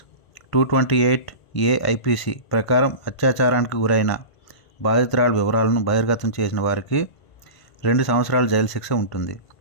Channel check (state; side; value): late; right; 1.5 ms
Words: 228 AIPC ప్రకారం అత్యాచారానికి గురైన బాధితురాలి వివరాలను బహిర్గతం చేసిన వారికి 2 సంవత్సరాల జైలు శిక్ష ఉంటుంది.